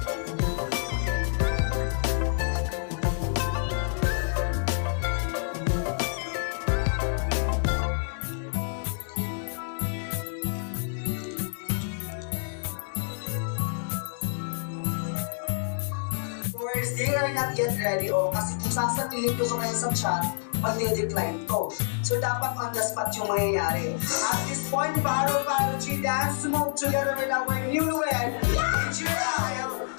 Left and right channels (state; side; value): silent; right; 59 dB below the other